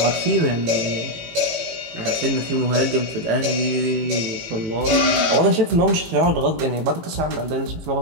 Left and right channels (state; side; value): late; left; 18 ms